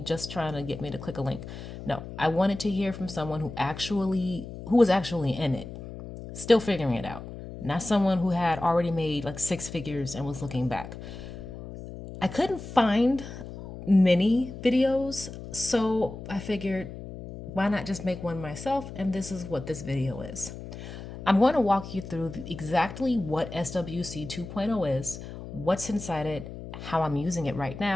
just trying to get me to click a link. No, I wanted to hear from someone who was actually in it, still figuring it out, not someone who had already made like six figures and was looking back. I couldn't find many videos, so I figured why not just make one myself? And this is what this video is. I'm going to walk you through exactly what SWC 2.0 is, what's inside it, how I'm using it right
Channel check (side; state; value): left; noise; hum, 11 dB below the sound